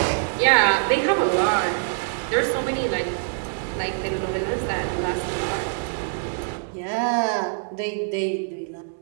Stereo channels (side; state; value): left; silent; 62 dB below the other